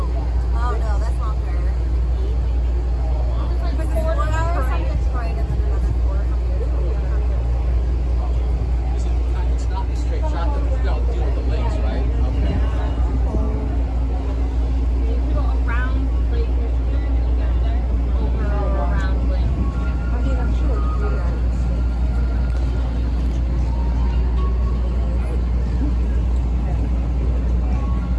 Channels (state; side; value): identical; both; correlation 1.00